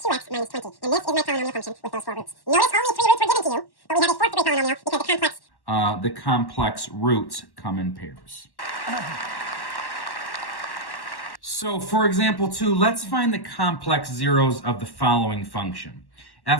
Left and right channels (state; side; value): late; right; 1.1 ms